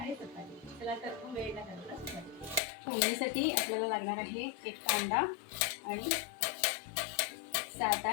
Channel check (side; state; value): right; drops out; at 2.6 s